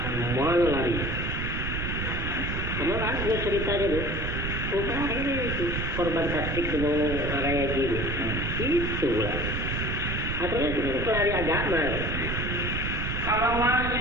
mana lari? Kemarin ada ceritanya tuh. Ini itu korban tasdik dengan raya gini. Itulah. Asalnya itu pelari agama. Kalau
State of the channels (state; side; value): noise; right; rumble, 2 dB below the sound